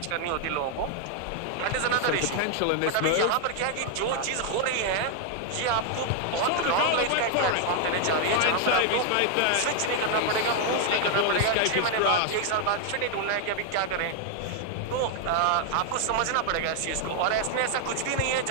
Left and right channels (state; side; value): different; both; correlation 0.00